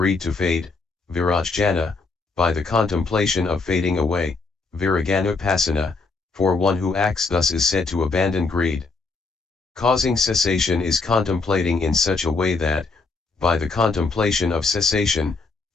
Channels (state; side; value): quieter; right; 4.0 dB